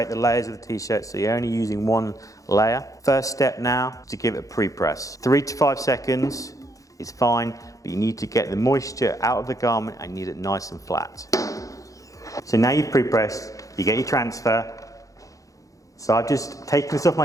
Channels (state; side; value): late; right; 0.16 ms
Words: the layers of the t-shirt so you're only using one layer. First step now is to give it a pre-press. 3 to 5 seconds is fine, but you need to get the moisture out of the garment and you need it nice and flat. So now you've pre-pressed, you get your transfer. So I've just taken this off